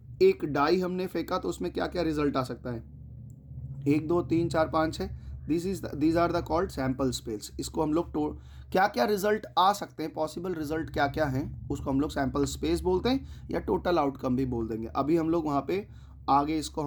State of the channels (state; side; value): identical; both; correlation 1.00